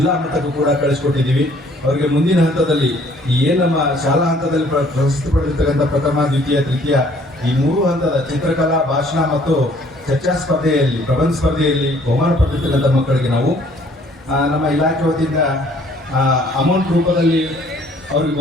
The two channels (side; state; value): both; normal; correlation 0.59